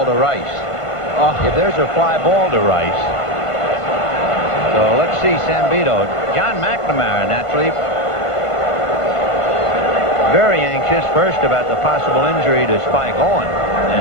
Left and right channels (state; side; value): late; right; 1.5 ms